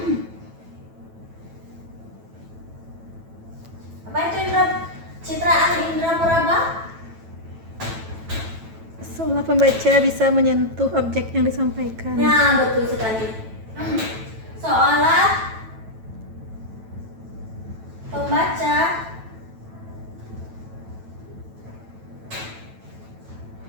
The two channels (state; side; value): late; left; 9.1 ms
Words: Apa itu citraan indra poraba? seolah pembaca bisa menyentuh objek yang disampaikan. Nah, betul sekali. Seolah pembaca